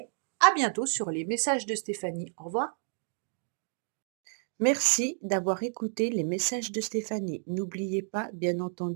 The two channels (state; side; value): silent; left; digital silence